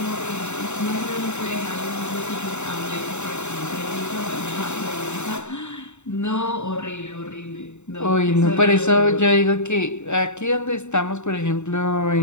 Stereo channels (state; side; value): late; right; 0.83 ms